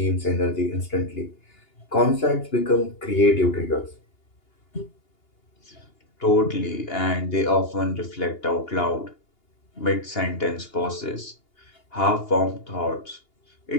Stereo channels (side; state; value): right; late; 2.8 ms